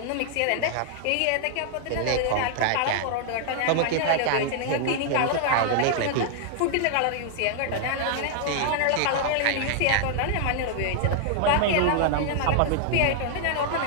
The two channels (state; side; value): different; both; correlation -0.01